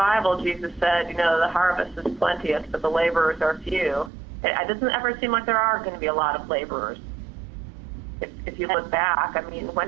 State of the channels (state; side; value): drops out; left; at 4.1 s